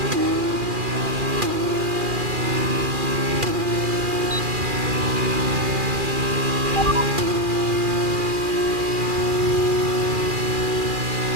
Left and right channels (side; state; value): left; late; 2.4 ms